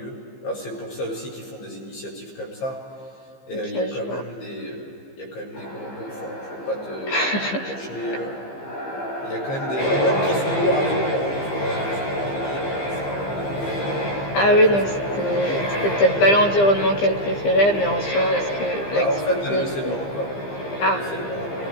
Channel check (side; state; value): right; late; 15 ms